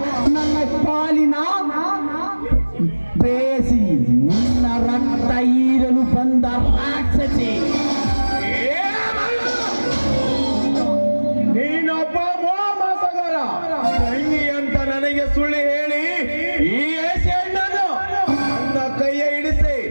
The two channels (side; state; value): both; inverted; correlation -1.00